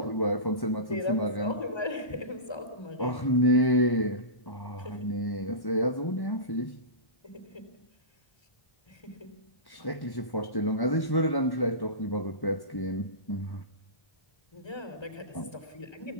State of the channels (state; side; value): late; right; 1.3 ms